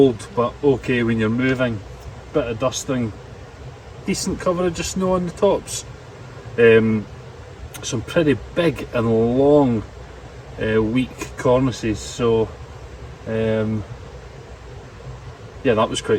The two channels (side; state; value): both; identical; correlation 1.00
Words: but okay when you're moving, bit of dusting, decent coverage of snow on the tops, some pretty big and long weak cornices, so yeah, that was